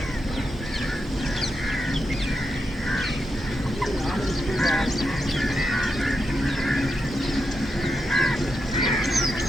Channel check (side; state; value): both; normal; correlation 0.86